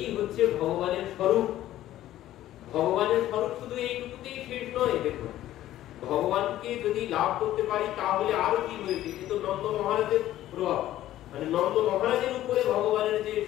হচ্ছে ভগবানের স্বরূপ। ভগবানের স্বরূপ শুধু এইটুকুতেই শেষ নয়। দেখুন, ভগবানকে যদি লাভ করতে পারি তাহলে আরো কি হয়েছে, কিন্তু নন্দ মহারাজের প্রভাব, মানে নন্দ মহারাজের উপরে ভগবানের যে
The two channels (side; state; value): right; quieter; 13.7 dB